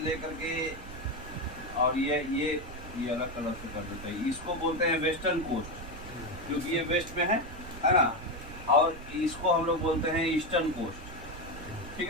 के, और ये अलग कलर से कर देते हैं, इसको बोलते हैं वेस्टर्न कोस्ट, क्योंकि ये वेस्ट में है ना। और इसको हम लोग बोलते हैं ईस्टर्न कोस्ट, ठीक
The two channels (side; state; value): right; noise; rumble, 13 dB below the sound